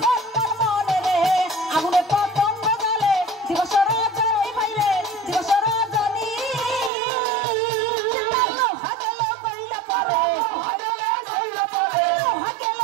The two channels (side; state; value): left; drops out; at 6.9 s